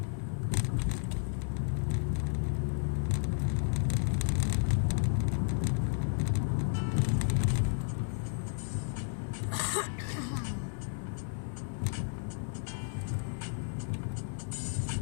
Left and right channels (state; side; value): silent; right; 56 dB below the other